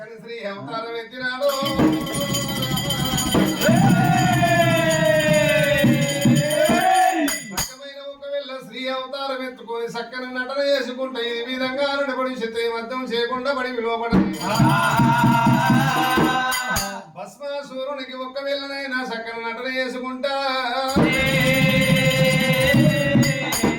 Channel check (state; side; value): identical; both; correlation 1.00